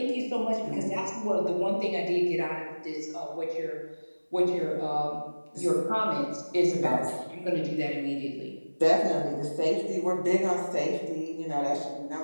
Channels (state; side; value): inverted; both; correlation -1.00